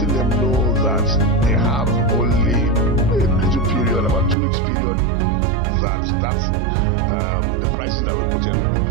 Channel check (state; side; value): drops out; left; at 4.4 s